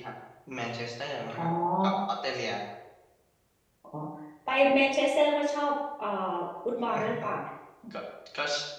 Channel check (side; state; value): both; identical; correlation 1.00